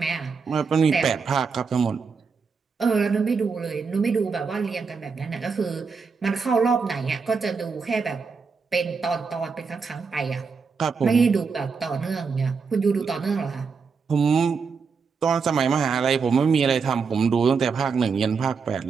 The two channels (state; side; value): quieter; left; 5.2 dB